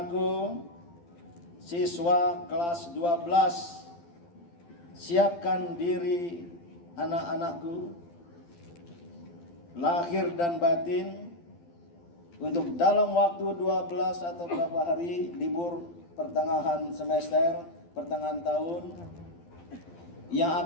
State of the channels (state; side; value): late; right; 12 ms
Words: siswa kelas 12, siapkan diri anak-anakku, lahir dan batin, untuk dalam waktu 12 atau beberapa hari libur pertengahan semester, pertengahan tahun, yang